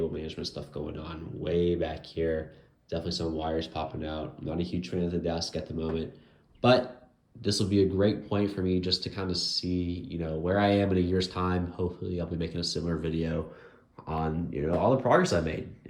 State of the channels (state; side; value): identical; both; correlation 1.00